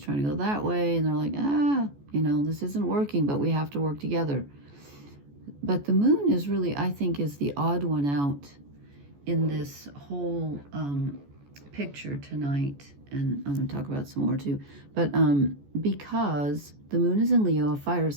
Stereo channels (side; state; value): left; late; 14 ms